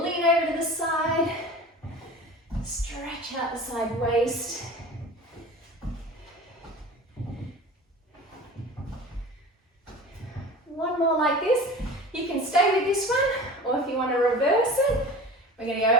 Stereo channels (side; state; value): both; normal; correlation 0.37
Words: over to the side. Stretch out the side waist. One more like this. You can stay with this one, or if you want to reverse it, we're going to go